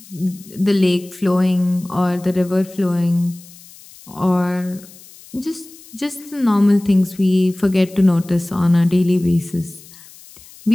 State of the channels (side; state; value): left; noise; hiss, 22 dB below the sound